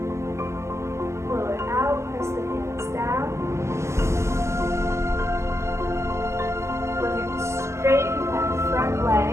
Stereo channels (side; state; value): left; late; 0.13 ms